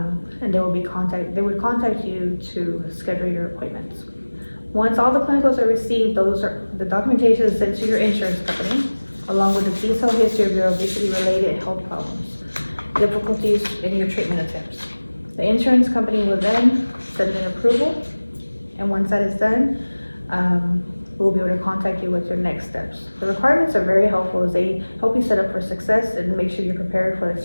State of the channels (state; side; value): inverted; both; correlation -1.00